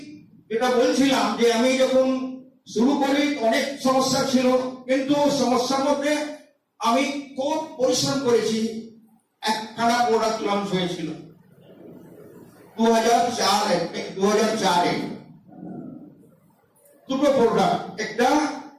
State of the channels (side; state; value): both; identical; correlation 1.00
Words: যেটা বলছিলাম যে আমি যখন শুরু করি অনেক সমস্যা ছিল, কিন্তু সমস্যার মধ্যে আমি খুব পরিশ্রম করেছি। একখানা প্রোডাক্ট লঞ্চ হয়েছিল 2004-এ, দুটো প্রোডাক্ট, একটা